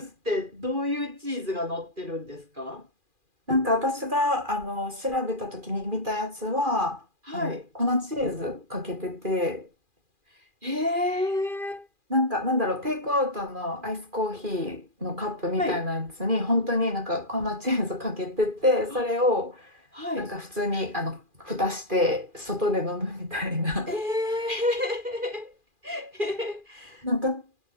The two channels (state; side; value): late; left; 2.4 ms